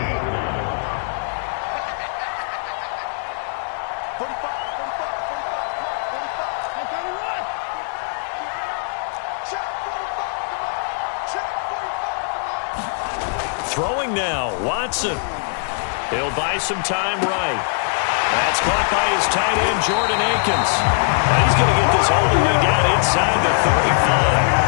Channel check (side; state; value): right; silent; digital silence